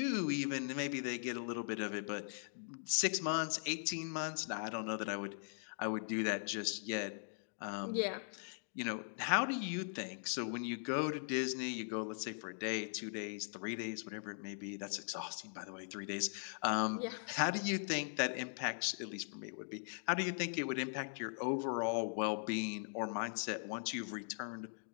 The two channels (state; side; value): silent; right; digital silence